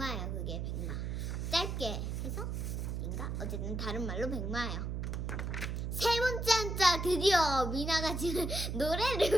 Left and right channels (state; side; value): noise; right; hum, 2 dB below the sound